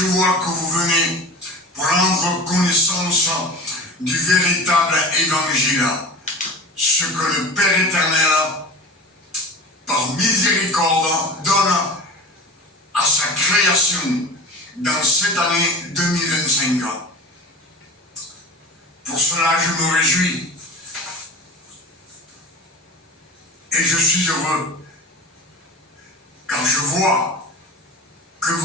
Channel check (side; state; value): both; normal; correlation 0.34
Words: vois que vous venez prendre connaissance du véritable évangile, ce que le Père éternel, par miséricorde, donne à sa création dans cette année 2025. Pour cela, je me réjouis et je suis heureux, car je vois que